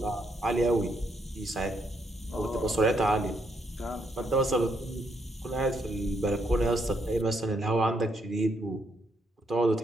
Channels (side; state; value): both; normal; correlation 0.75